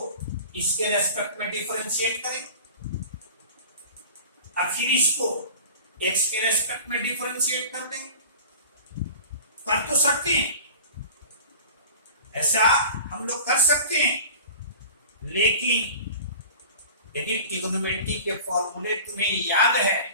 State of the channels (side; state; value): both; inverted; correlation -0.39